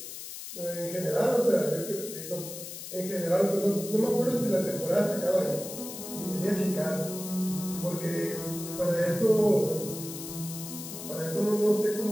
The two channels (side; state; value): left; noise; hiss, 10 dB below the sound